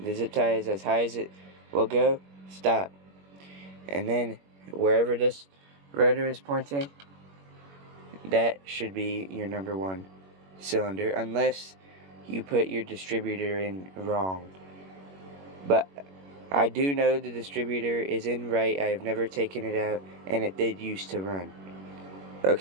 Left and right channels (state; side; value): late; left; 21 ms